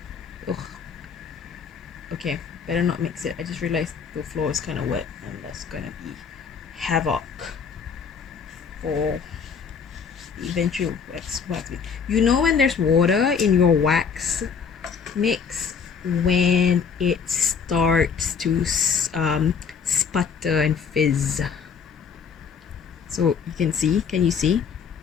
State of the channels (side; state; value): right; quieter; 6.2 dB